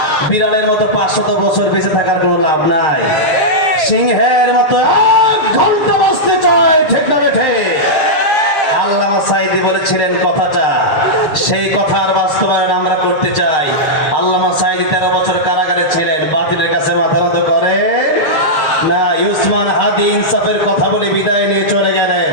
বিড়ালের মতো 500 বছর বেঁচে থাকার কোনো লাভ নাই। সিংহের মতো 1 ঘন্টা বাঁচতে চাই, ঠিক না বেঠে? আল্লামা সাঈদী বলেছিলেন কথাটা, সেই কথার বাস্তবায়ন আমরা করতে চাই। আল্লামা সাঈদী 13 বছর কারাগারে ছিলেন, বাতিলের কাছে মাথা নত করে না। উসমান হাদি ইনসাফের কথা বলে বিদায় নিয়ে চলে গেলেন,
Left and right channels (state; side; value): late; right; 6.5 ms